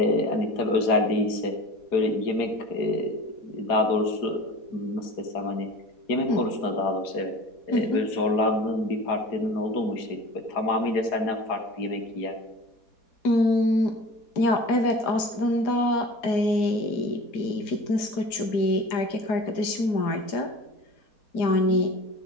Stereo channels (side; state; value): right; late; 4.8 ms